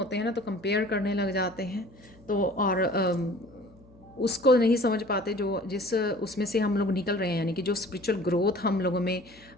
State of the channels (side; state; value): left; noise; hum, 26 dB below the sound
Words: हैं ना, तो कंपेयर करने लग जाते हैं, तो और उसको नहीं समझ पाते जो जिस उसमें से हम लोग निकल रहे हैं, यानी कि जो स्पिरिचुअल ग्रोथ हम लोगों में